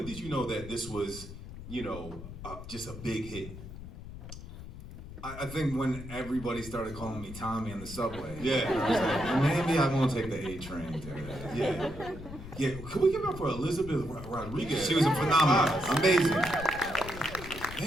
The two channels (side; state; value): left; noise; rumble, 12 dB below the sound